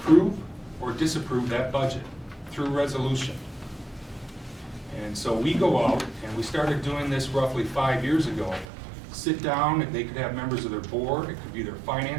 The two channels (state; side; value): drops out; left; at 8.7 s